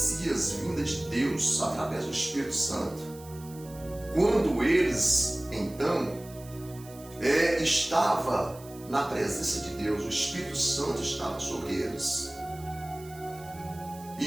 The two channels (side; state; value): right; noise; hiss, 20 dB below the sound